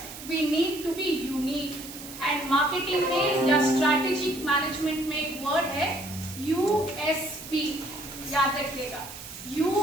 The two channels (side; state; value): right; noise; hiss, 13 dB below the sound